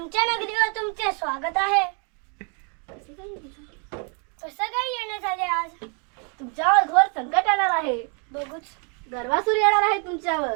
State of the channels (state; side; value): quieter; left; 37.8 dB